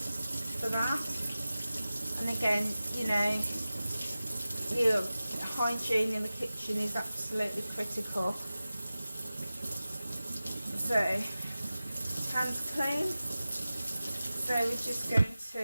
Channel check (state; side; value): inverted; both; correlation -0.95